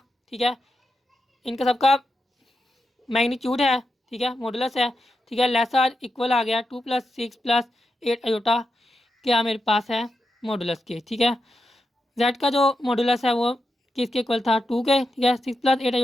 ठीक है, इनका सबका मैग्नीट्यूड है। ठीक है, मॉडुलस है। ठीक है, लेसर इक्वल आ गया 2 + 6 + 8 आयोटा क्या मेरे पास है मॉडुलस के। ठीक है, जेड का जो मॉडुलस है वो किसके इक्वल था 2 के। ठीक है, 6 + 8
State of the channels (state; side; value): normal; both; correlation 0.87